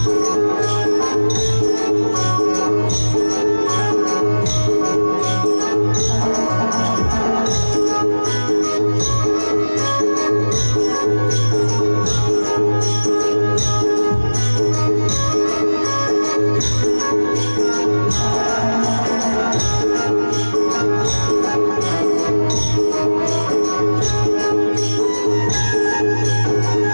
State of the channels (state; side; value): inverted; both; correlation -1.00